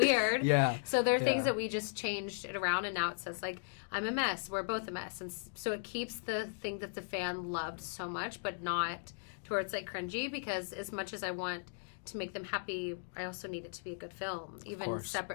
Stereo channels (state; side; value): silent; right; digital silence